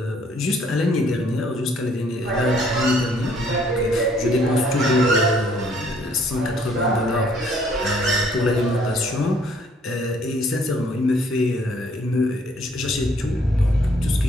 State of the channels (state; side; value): normal; both; correlation 0.63